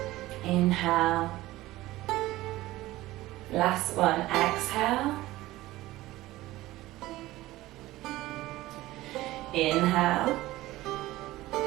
Inhale. Last one. Exhale. Inhale.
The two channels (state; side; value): quieter; left; 17.3 dB